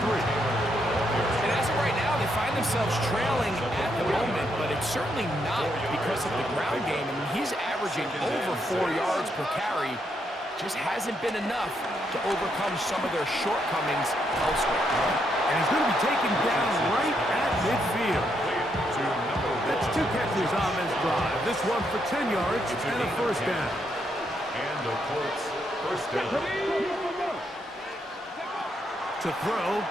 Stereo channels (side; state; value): both; normal; correlation 0.77